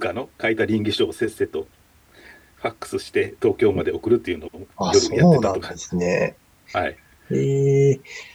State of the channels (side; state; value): both; identical; correlation 1.00